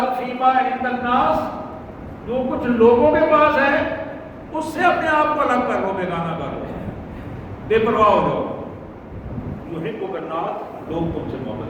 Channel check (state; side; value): identical; both; correlation 1.00